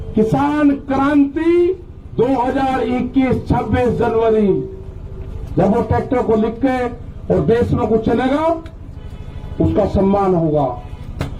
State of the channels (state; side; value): identical; both; correlation 1.00